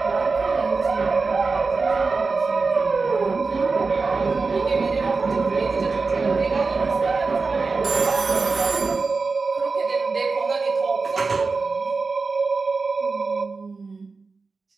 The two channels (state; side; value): quieter; left; 4.2 dB